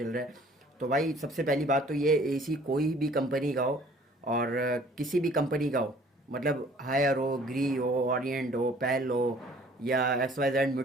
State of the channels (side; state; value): both; normal; correlation 0.54